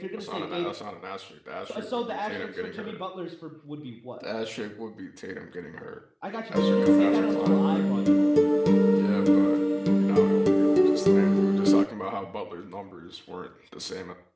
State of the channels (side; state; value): both; identical; correlation 1.00